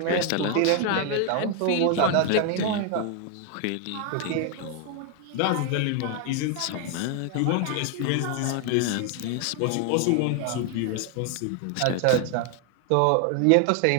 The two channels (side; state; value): both; different; correlation 0.01